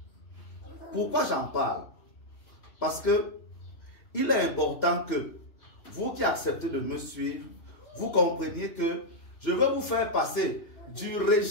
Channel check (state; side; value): late; right; 2.9 ms